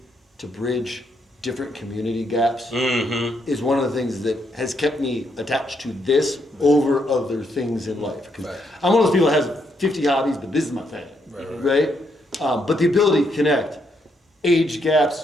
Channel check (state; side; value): normal; both; correlation 0.76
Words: to bridge different community gaps is one of the things that has kept me attached to this over other things in life. 'Cause Right. I'm one of those people that has 50 hobbies, but this is my thing, right? But the ability to connect age